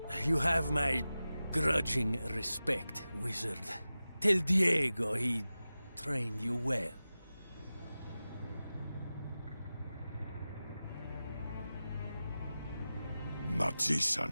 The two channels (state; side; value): inverted; both; correlation -0.95